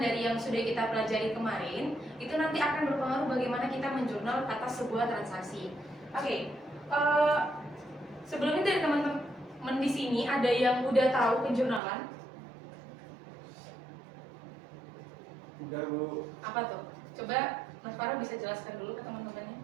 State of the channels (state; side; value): drops out; left; at 11.8 s